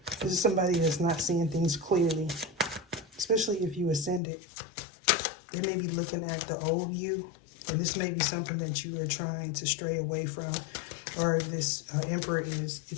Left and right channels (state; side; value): drops out; right; at 4.2 s